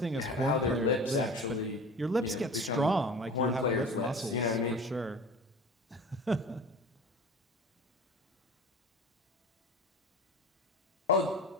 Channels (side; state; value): both; normal; correlation 0.37